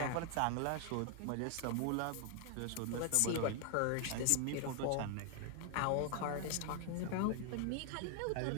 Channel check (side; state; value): both; different; correlation 0.00